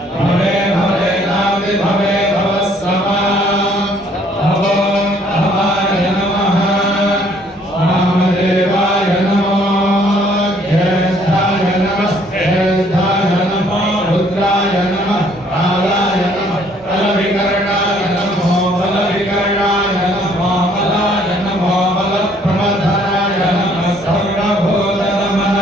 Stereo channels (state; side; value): normal; both; correlation 0.62